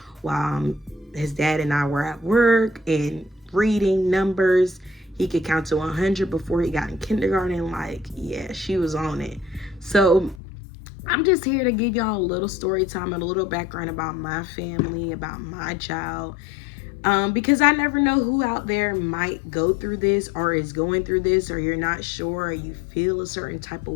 while his dad and I were at work, and reading numbers. He could count to 100 before he got in kindergarten. Like, yeah, she was on it. So I'm just here to give y'all a little story time and a little background about my family, about my child. Because I never know who out there might go through this or is going through this, or you're not sure, or you feel a certain type of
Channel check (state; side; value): drops out; right; at 10.4 s